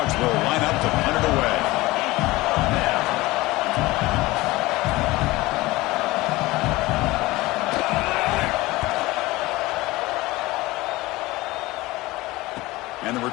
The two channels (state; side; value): quieter; right; 19.9 dB